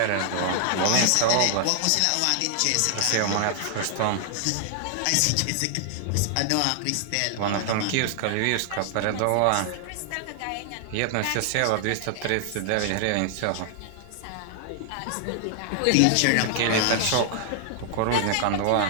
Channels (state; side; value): different; both; correlation 0.00